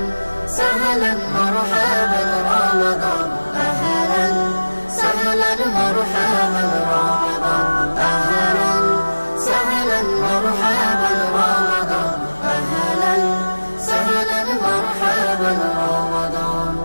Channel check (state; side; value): inverted; both; correlation -1.00